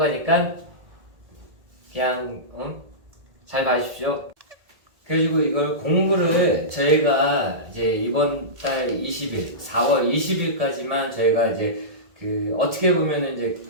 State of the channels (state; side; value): late; left; 1.8 ms